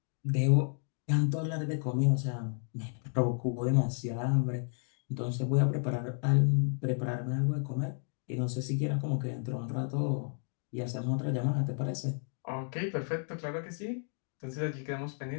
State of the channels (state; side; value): silent; right; 56 dB below the other